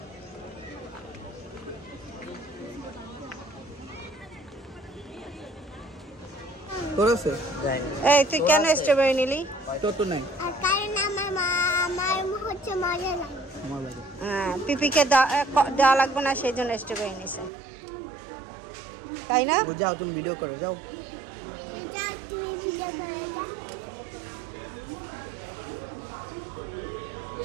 করেছে যাই। এই তুই কেন স্ট্রবেরি নিলি? তত নাই কারণ আমার হচ্ছে মজা লাগে। আমার লাগে। হ্যাঁ, পিপিকে দেওয়া লাগবে না সেই জন্য স্ট্রবেরি নিছে, তাই না? যাও তুমি ভিডিও করো, যাও। যাও তুমি ভিডিও করে দাও।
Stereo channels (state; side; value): drops out; left; at 17.5 s